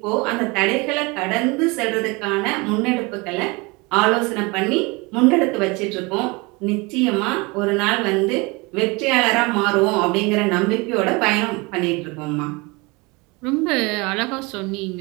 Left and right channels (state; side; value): quieter; left; 26.3 dB